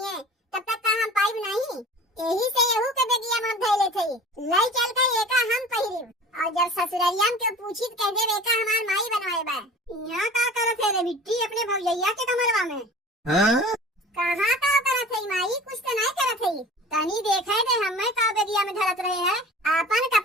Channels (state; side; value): normal; both; correlation 0.41